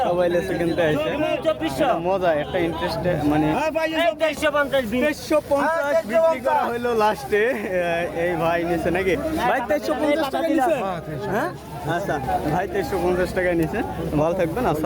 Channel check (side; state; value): both; identical; correlation 1.00